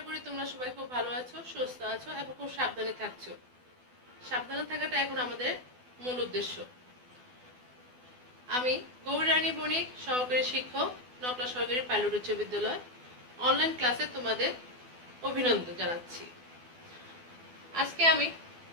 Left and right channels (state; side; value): late; left; 12 ms